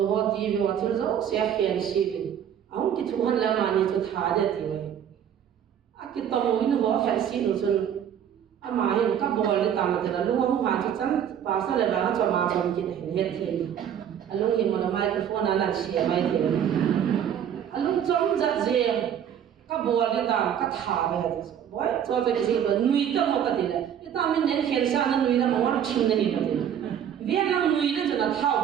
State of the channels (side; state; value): left; quieter; 9.2 dB